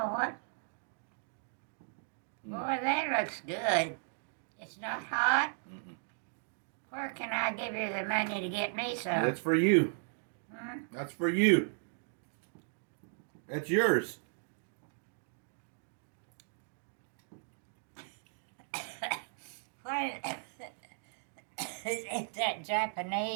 what. Boy, that looks good. It's not hot. Where can I give you the money to get me some? That's for you. Hmm? That's for you. That's yours. What? Is that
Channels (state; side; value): silent; left; digital silence